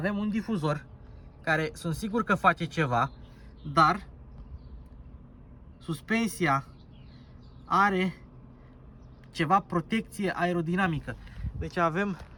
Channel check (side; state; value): both; identical; correlation 1.00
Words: un difuzor care sunt sigur că face ceva, dar suspensia are ceva protecție aerodinamică. Deci avem,